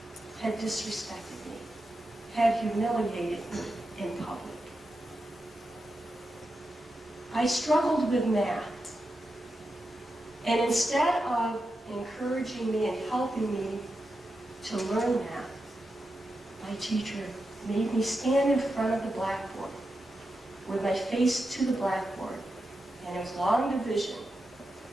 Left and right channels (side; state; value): both; normal; correlation 0.89